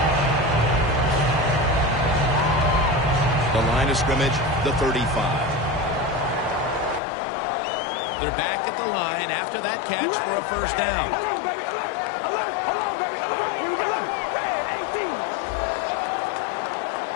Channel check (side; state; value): right; drops out; at 7.0 s